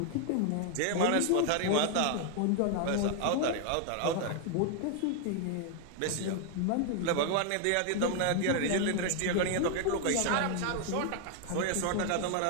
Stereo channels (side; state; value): both; different; correlation 0.00